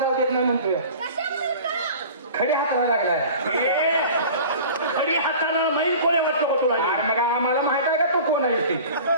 देत नाही म्हणतोय खडी हाताला लागलाय खडी हाताला माहीत कोणी वाटतं तुला मग आम्हाला माहित आहे का तू कोण आहे ते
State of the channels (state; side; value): inverted; both; correlation -0.41